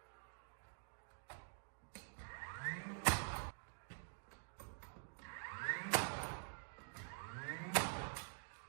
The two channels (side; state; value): left; silent; digital silence